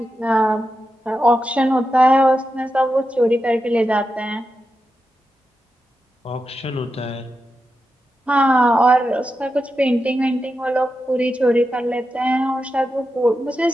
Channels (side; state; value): both; normal; correlation 0.89